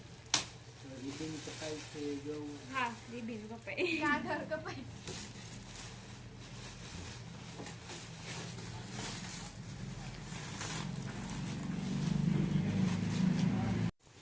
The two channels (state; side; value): identical; both; correlation 1.00